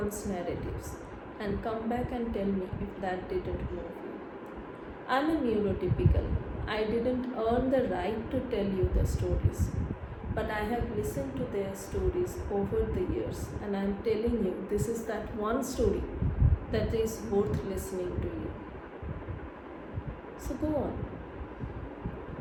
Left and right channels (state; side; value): identical; both; correlation 1.00